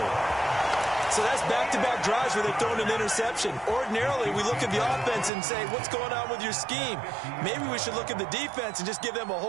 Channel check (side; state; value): left; drops out; at 5.3 s